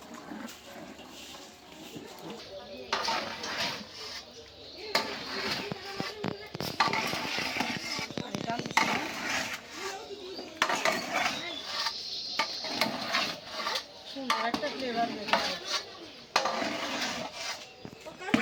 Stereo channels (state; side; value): identical; both; correlation 1.00